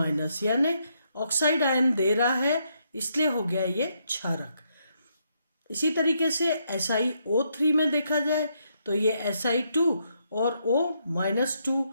यानी ऑक्साइड आयन दे रहा है, इसलिए हो गया ये क्षारक। इसी तरीके से SiO3 में देखा जाए तो ये Si2 और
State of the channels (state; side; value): inverted; both; correlation -0.76